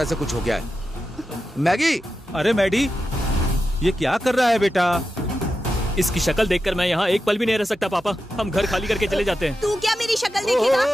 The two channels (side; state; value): both; normal; correlation 0.90